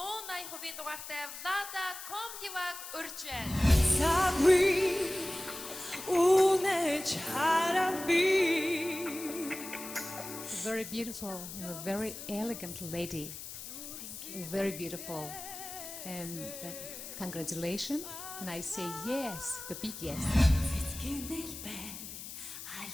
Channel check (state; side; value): noise; left; hiss, 10 dB below the sound